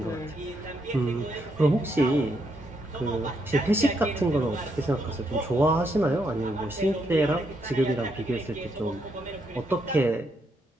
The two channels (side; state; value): both; normal; correlation 0.77